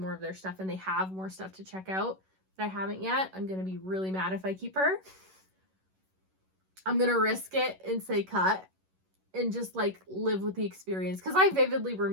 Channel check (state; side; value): late; left; 11 ms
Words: of their stuff and they have more stuff to check out that I haven't yet, I'm going to be really mad if I keep her. I'm going to risk it and say cut and just, like, live with the experience. Because I vividly